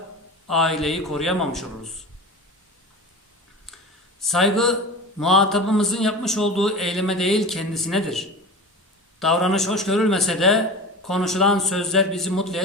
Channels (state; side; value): normal; both; correlation 0.31